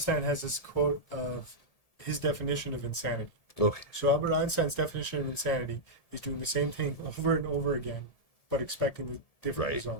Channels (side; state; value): right; late; 1.7 ms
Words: has this quote of his definition of insanity. Okay. So Albert Einstein's definition of insanity is doing the same thing over and over again, but expecting the different